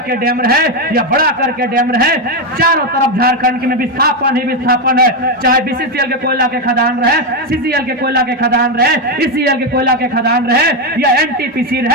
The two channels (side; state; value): both; normal; correlation 0.07